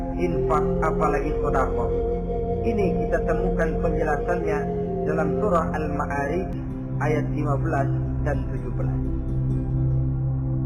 infak, apalagi sedekah. Ini kita temukan penjelasannya dalam surah Al-Ma'arij ayat 15 dan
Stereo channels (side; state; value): both; identical; correlation 1.00